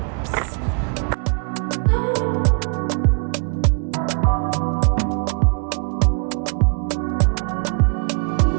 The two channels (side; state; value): left; quieter; 37.9 dB